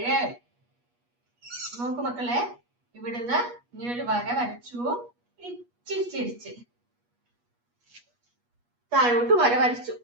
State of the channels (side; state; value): left; late; 8.3 ms